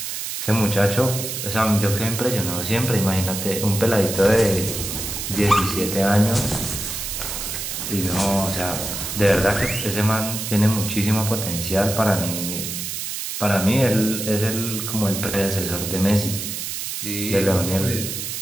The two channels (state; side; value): noise; right; hiss, 5 dB below the sound